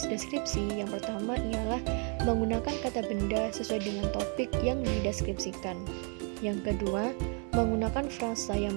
deskripsi yang pertama ialah menggunakan kata benda sesuai dengan topik yang dideskripsikan. Yang kedua, menggunakan frasa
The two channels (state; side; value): quieter; left; 38.8 dB